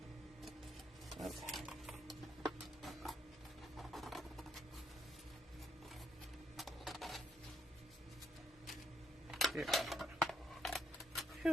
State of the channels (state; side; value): normal; both; correlation 0.75